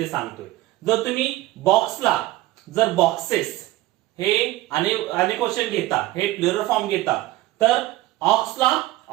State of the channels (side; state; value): left; quieter; 17.1 dB